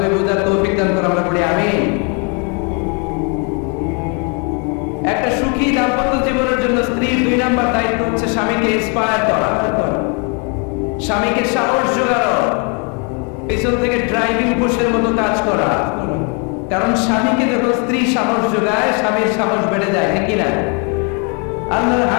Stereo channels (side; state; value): right; quieter; 35.9 dB